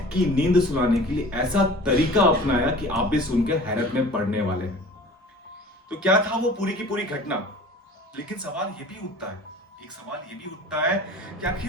की नींद सुलाने के लिए ऐसा तरीका अपनाया कि आप भी सुनकर हैरत में पड़ने वाले हैं। तो क्या था वो पूरी की पूरी घटना? लेकिन सवाल ये भी उठता है, एक सवाल ये भी उठता है कि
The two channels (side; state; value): both; normal; correlation 0.43